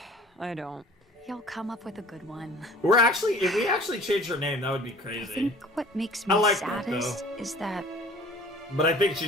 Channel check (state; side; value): normal; both; correlation 0.47